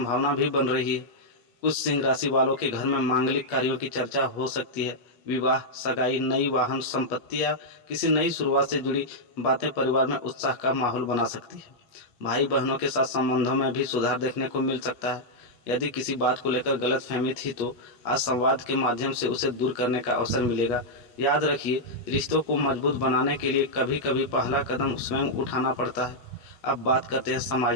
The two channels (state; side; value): late; right; 8.3 ms